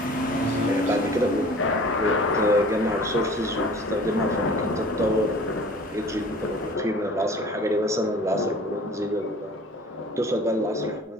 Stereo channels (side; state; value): both; normal; correlation 0.46